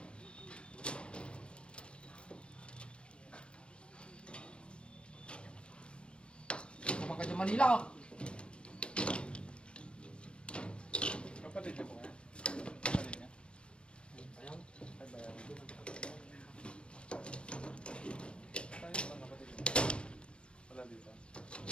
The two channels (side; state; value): right; late; 0.057 ms